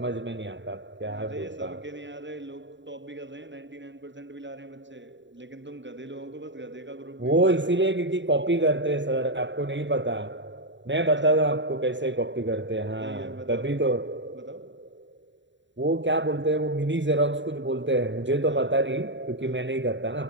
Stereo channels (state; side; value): late; left; 0.54 ms